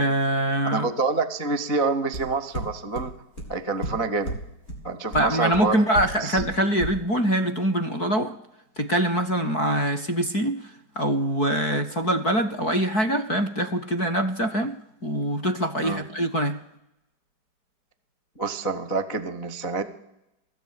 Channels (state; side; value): late; right; 4.6 ms